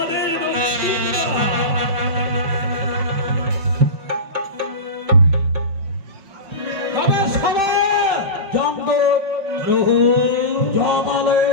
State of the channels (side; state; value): left; late; 5.6 ms